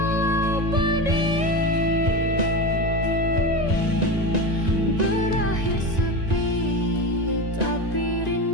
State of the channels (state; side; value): late; left; 1.9 ms